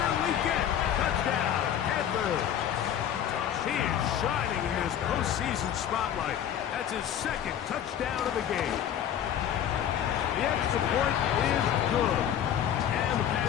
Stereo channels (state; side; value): quieter; right; 9.9 dB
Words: Legette, touchdown, Panthers. He is shining in this postseason spotlight. That's his 2nd touchdown of the game. The extra point is good. And the